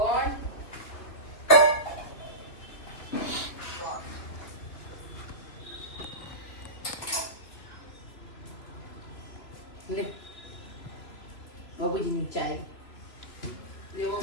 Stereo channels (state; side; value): late; right; 3.2 ms